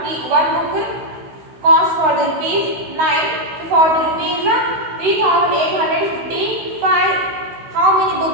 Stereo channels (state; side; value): late; left; 16 ms